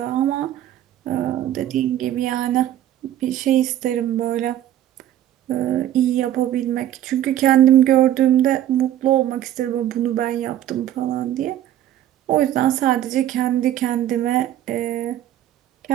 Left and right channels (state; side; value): quieter; left; 12.1 dB